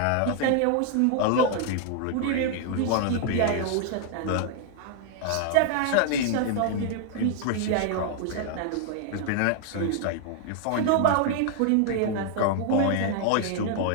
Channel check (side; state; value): both; different; correlation 0.00